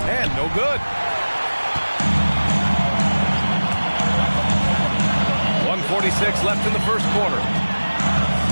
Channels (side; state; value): both; inverted; correlation -1.00